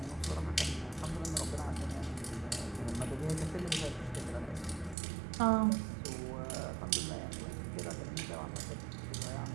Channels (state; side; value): drops out; left; at 5.0 s